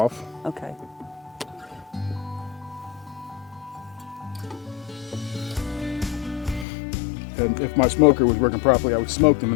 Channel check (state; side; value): drops out; right; at 6.7 s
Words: Okay. And if my smoker was working properly, I would smoke them